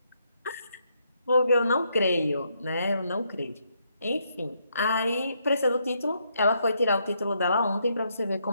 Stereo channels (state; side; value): inverted; both; correlation -0.76